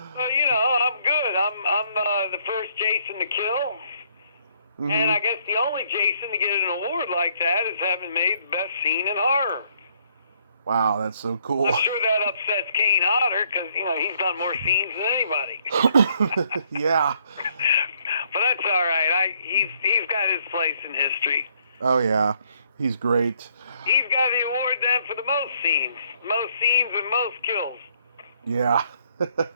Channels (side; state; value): both; inverted; correlation -0.68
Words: good. I'm the first Jason to kill. Mm-hmm. And I guess the only Jason to get an award like that is having made the best scene in horror. Wow, that's so cool. I'm sure that upsets Kane Hodder because, he's done more scenes than anybody. Yeah. But that's all right. He's got his place in history. Oh, yeah. He's great. He's got the award then for the most scenes. Most scenes and most kills. Yeah.